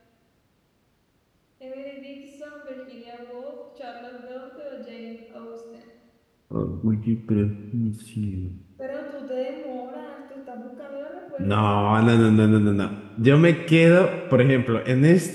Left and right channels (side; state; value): both; identical; correlation 1.00